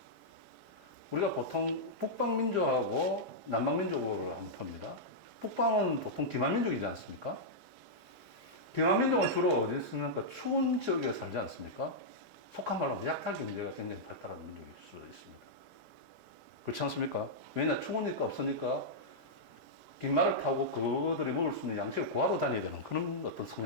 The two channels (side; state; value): left; late; 5.0 ms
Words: 우리가 보통 북방민족하고 남방민족을 한번 봅니다. 북방은 보통 기만민족이지 않습니까? 기만민족은 주로 어디 있습니까? 추운 지역에 살지 않습니까? 속한 말로 하면 약탈 경제가 굉장히 발달한 민족일 수 있습니다. 그렇지 않습니까? 왜냐, 추우니까 없으니까 깃말을 타고 그들이 먹을 수 있는 양식을 구하러 다녀야 되는 그런 어떤